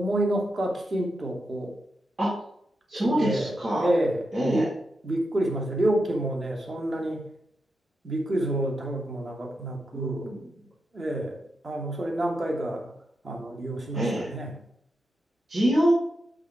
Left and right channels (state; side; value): normal; both; correlation 0.86